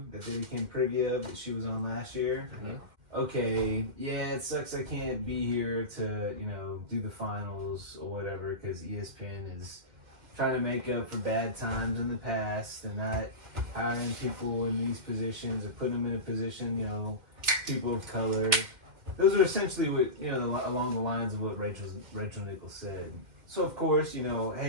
that they became privy of that she was on last year? Mm-hmm. Okay, yeah, it sucks I can't be here to, do the finals or whatever because ESPN is trying to make up for bad times in the past. They're not hiring people in these positions or putting them in a position, people of color. Those are essentially what, along the lines of what Rachel Nichols said. So, of course,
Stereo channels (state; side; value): late; left; 2.1 ms